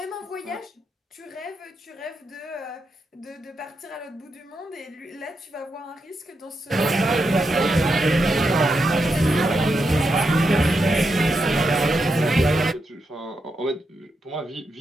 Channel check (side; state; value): both; normal; correlation 0.84